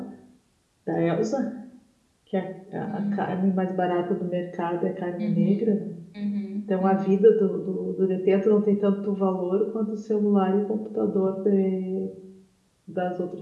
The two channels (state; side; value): identical; both; correlation 1.00